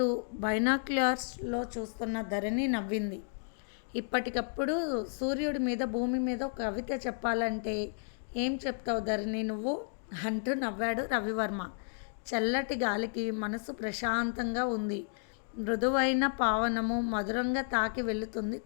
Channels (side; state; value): right; silent; 56 dB below the other